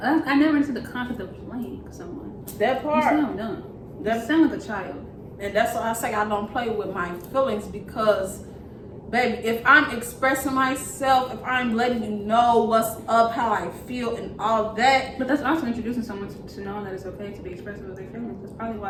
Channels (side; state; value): both; identical; correlation 1.00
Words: I never into the concept of playing someone. That part. You sound dumb. You sound like a child. And that's why I say I don't play with my feelings because, baby, if I'm expressing myself, if I'm letting you know what's up, how I feel, and all that. But that's also introducing someone to know that it's okay to be expressive of their feelings. That's probably